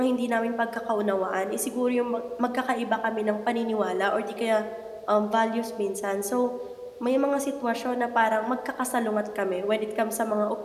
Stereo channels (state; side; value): identical; both; correlation 1.00